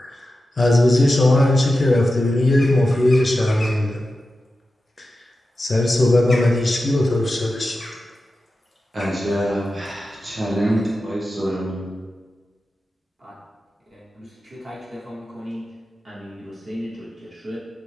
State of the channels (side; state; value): both; normal; correlation 0.92